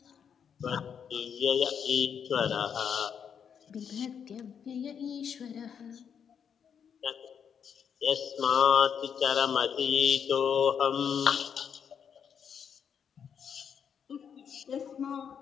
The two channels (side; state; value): right; quieter; 7.5 dB